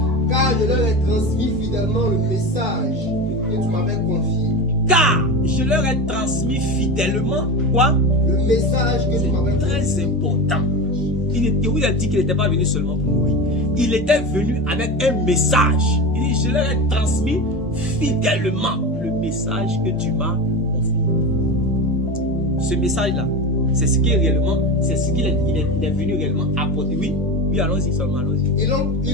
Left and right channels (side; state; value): both; normal; correlation 0.24